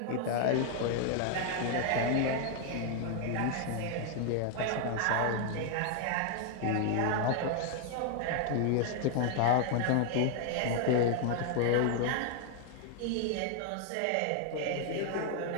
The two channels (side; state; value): both; different; correlation 0.00